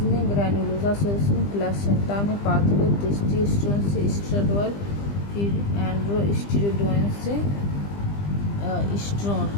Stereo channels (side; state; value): right; late; 20 ms